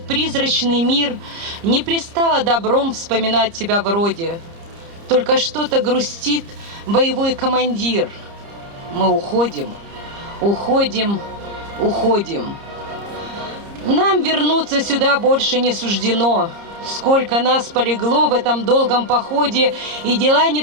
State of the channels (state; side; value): late; left; 30 ms